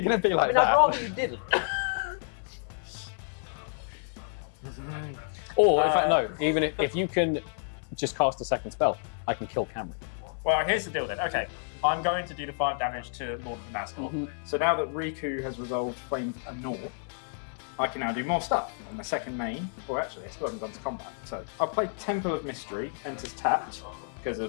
I like mean, I'd that, rather you didn't. Or in fact, no. Even if you can just cast a second spell, I can kill Cameron. Well, here's the deal then. Okay, I'm going to do the 5 damage to Lord of the Nazgul. So now that Riku has resolved Flame and Gnaw, I can now do more stuff. And the second main, or actually, I still haven't gone to combat. So I'll play Temple of Mystery, enters tapped. Because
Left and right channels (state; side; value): silent; right; digital silence